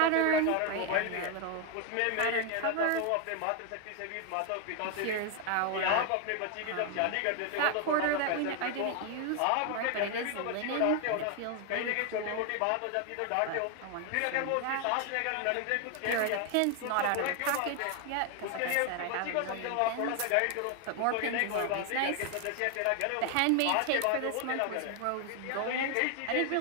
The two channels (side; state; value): both; different; correlation 0.00